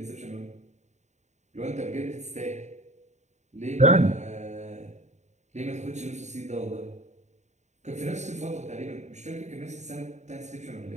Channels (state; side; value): late; left; 0.34 ms